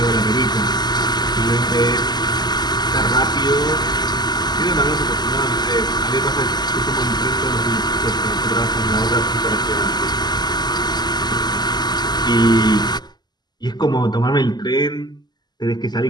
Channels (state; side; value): late; right; 0.21 ms